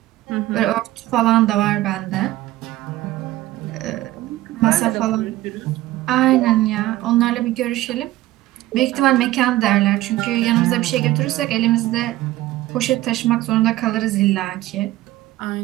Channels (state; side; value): quieter; left; 16.1 dB